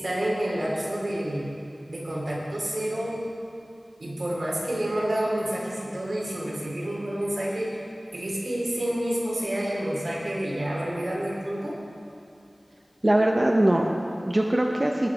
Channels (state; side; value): normal; both; correlation 0.98